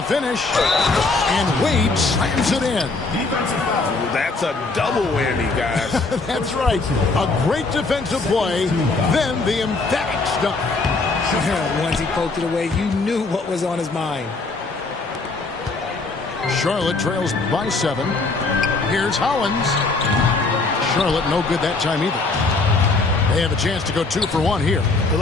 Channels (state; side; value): quieter; right; 3.7 dB